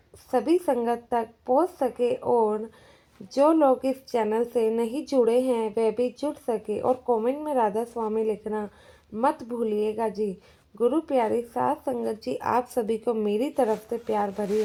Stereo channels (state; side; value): identical; both; correlation 1.00